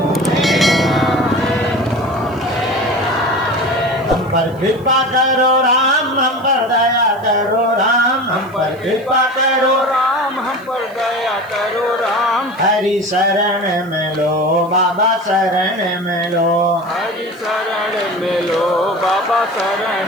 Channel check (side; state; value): right; noise; hiss, 28 dB below the sound